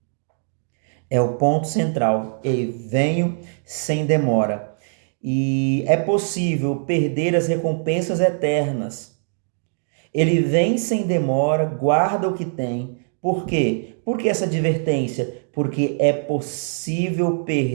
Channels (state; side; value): silent; left; digital silence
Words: É o ponto central. Eu venho sem demora. E é possível perder as recompensas eternas. Ele vem sem demora, guarda o que tem. Por quê? Por que essa advertência? Porque é possível